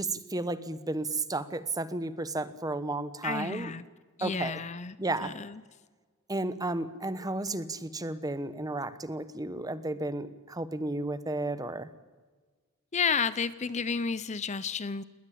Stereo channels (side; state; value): both; normal; correlation 0.41